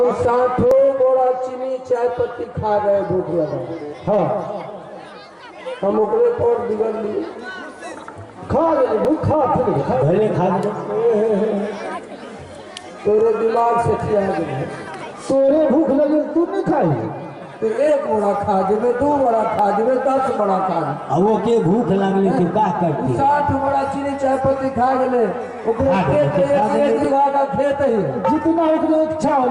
60 बड़ा चीनी चाय पत्ती खा रहे भूख लगा। हाँ, हम ओकरे पर बिगड़ लिए। खा ले, भूखा फिर खा, पहले खा ले। तोरे दिमाग से खिया गए। तोरे भूख लगे तू नहीं खाई? तो 1 बड़ा खा जेबे, 2 बड़ा खा जेबे, 10 बड़ा खा जेबे। वो के भूख लगले के का करती? 60 बड़ा चीनी चाय पत्ती खा गए। ओकरे खा गए, खेत खा गए। 1 बीघा का खेत है। जितना उतना इच्छा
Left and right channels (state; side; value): identical; both; correlation 1.00